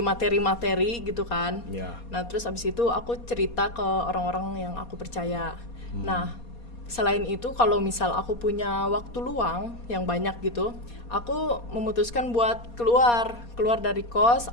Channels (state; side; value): late; right; 4.2 ms